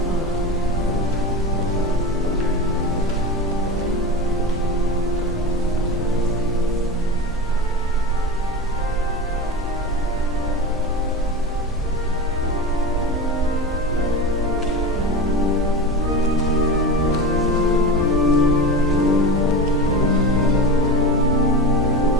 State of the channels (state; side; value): normal; both; correlation 0.26